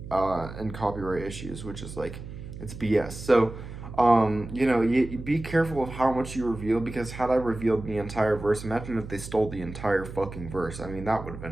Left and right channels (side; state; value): right; noise; hum, 11 dB below the sound